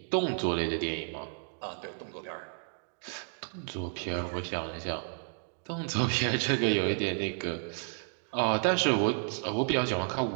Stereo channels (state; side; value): silent; left; 57 dB below the other